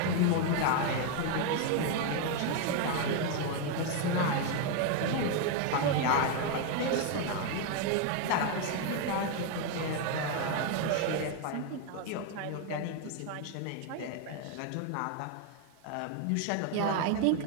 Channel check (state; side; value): different; both; correlation 0.01